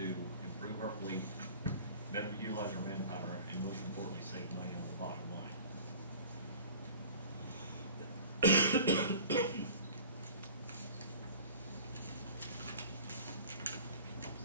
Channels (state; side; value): inverted; both; correlation -0.43